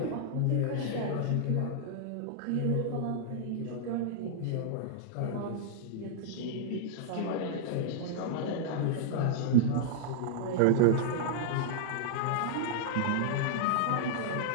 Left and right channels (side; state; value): both; different; correlation -0.01